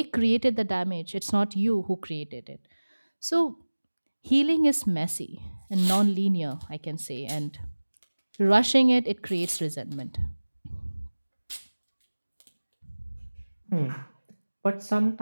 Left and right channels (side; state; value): both; inverted; correlation -1.00